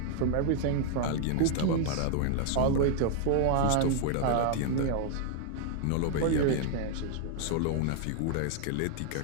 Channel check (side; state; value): both; different; correlation 0.00